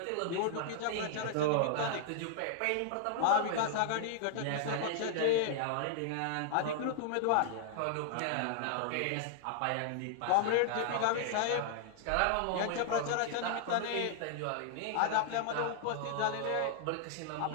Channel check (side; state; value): both; different; correlation -0.01